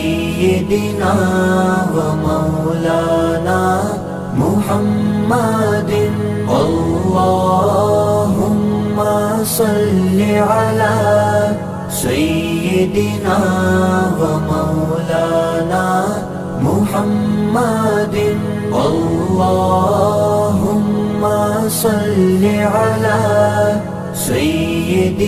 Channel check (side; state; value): both; identical; correlation 1.00